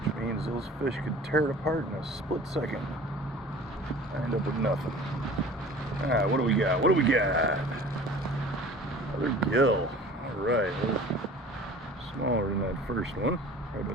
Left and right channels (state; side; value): normal; both; correlation 0.44